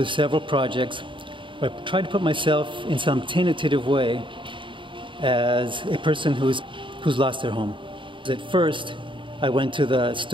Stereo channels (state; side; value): late; left; 0.24 ms